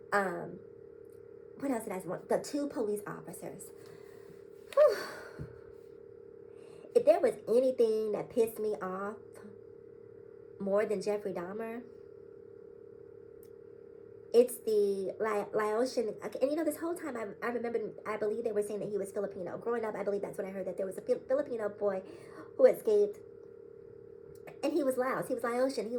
What else did I want? The 2 police officers. Whew. If there was anything that pissed me off more than Jeffrey Dahmer, it's the Laotian. And you know, this whole time I remember, I believe they were saying that he was Filipino. Growing up, I believe that's what I heard, that there was a Filipino boy who escaped, and he was Laos. He was Laotian. He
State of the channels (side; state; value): both; identical; correlation 1.00